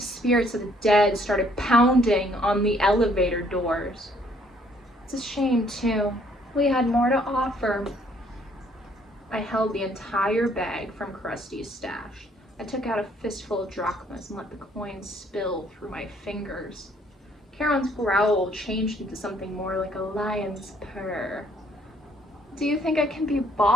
spirits of the dead started pounding on the elevator doors. It's a shame, too. We had more to offer. I held the entire bag from Crusty's stash. I took out a fistful of drachmas and let the coins spill through my fingers. Charon's growl changed into something more like a lion's purr. Do you think I can be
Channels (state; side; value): normal; both; correlation 0.64